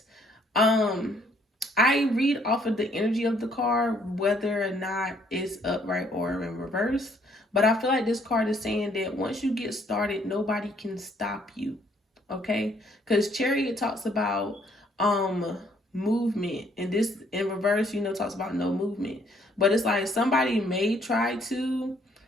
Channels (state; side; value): normal; both; correlation 0.65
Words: I read off of the energy of the card, whether or not it's upright or in reverse. But I feel like this card is saying that once you get started, nobody can stop you. Okay? Because Chariot talks about movement, and this in reverse, talks about no movement. But it's like somebody may try to